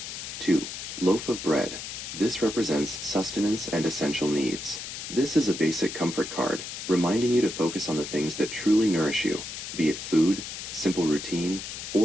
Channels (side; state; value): left; noise; hiss, 8 dB below the sound